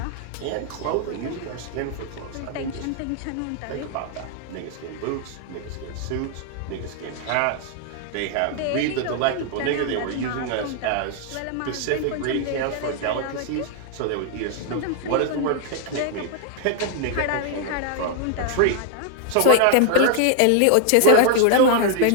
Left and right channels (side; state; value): both; different; correlation 0.00